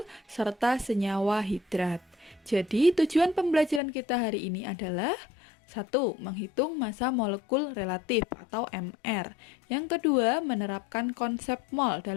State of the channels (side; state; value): right; drops out; at 3.8 s